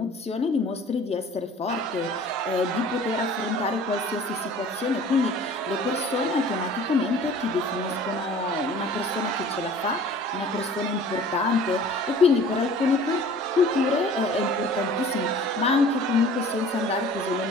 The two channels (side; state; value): both; normal; correlation 0.47